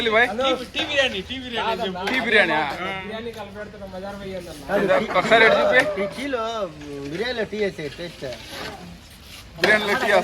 బాయ్. టీ బిర్యానీ ఒకసారి చూపి. టీలో బిర్యానీలో టీ వేసే టేస్ట్. బిర్యానీలో టీ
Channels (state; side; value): identical; both; correlation 1.00